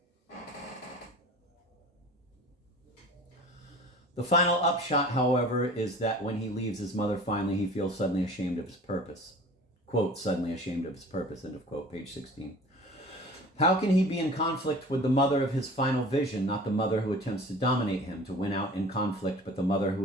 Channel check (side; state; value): both; normal; correlation 0.43